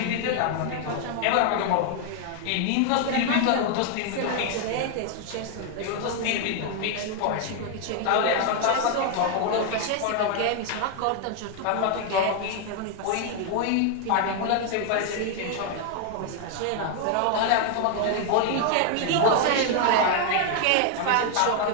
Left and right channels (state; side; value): different; both; correlation 0.00